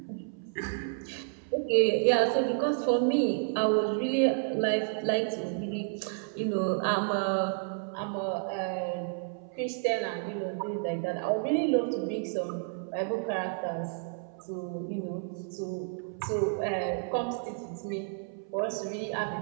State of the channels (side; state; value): left; silent; 57 dB below the other